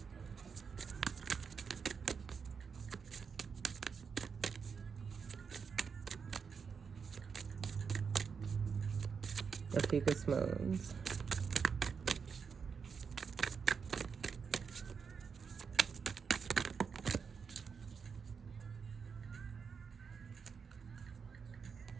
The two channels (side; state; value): left; quieter; 6.0 dB